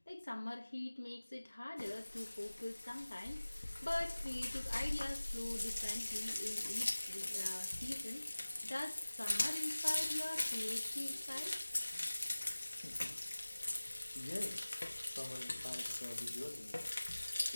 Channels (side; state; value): both; inverted; correlation -1.00